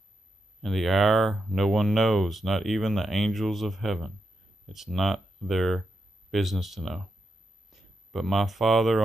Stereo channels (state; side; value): normal; both; correlation 0.85